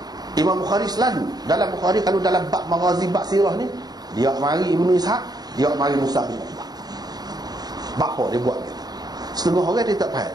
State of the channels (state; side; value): late; left; 0.19 ms